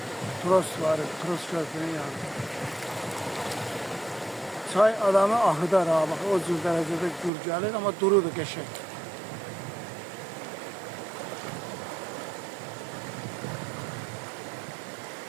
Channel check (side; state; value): left; drops out; at 7.3 s